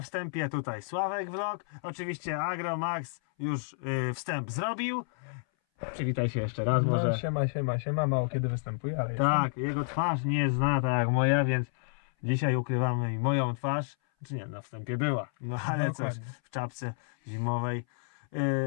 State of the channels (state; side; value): silent; right; 58 dB below the other